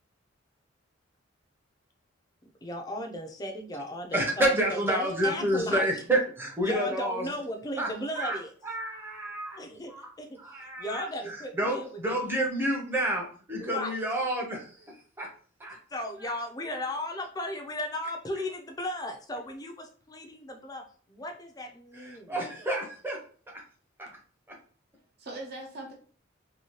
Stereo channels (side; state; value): both; normal; correlation 0.29